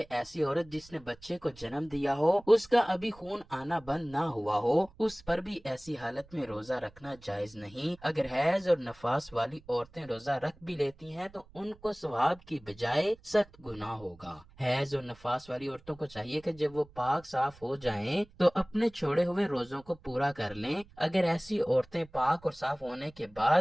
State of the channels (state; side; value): noise; right; rumble, 25 dB below the sound